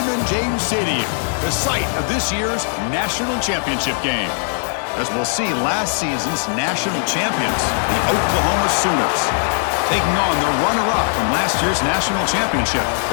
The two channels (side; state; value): right; silent; 59 dB below the other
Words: James Stadium, the site of this year's national championship game. As we'll see, last season's national champions, the Oklahoma Sooners, taking on the runner-up from last year's national championship,